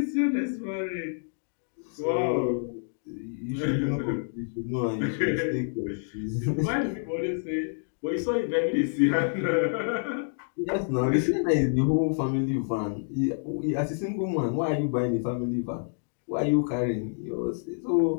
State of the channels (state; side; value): silent; right; digital silence